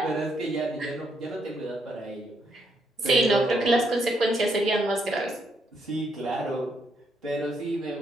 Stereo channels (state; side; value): normal; both; correlation 0.75